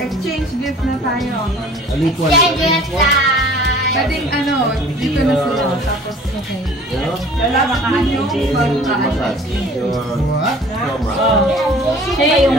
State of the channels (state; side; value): normal; both; correlation 0.48